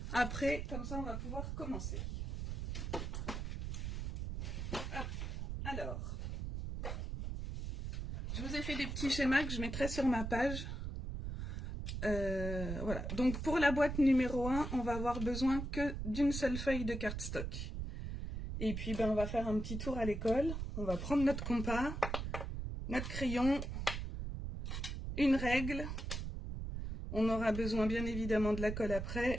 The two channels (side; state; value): right; noise; rumble, 4 dB below the sound